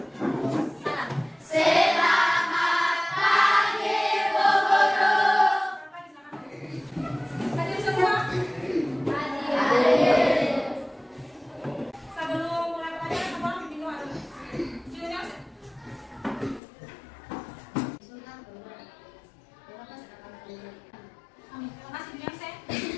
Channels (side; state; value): right; drops out; at 16.6 s